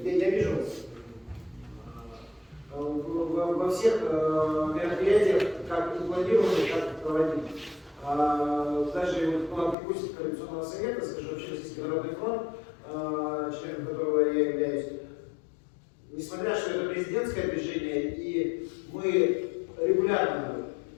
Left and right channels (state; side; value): drops out; right; at 9.8 s